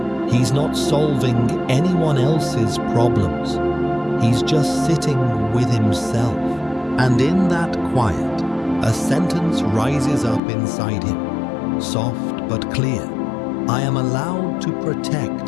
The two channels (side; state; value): right; drops out; at 10.4 s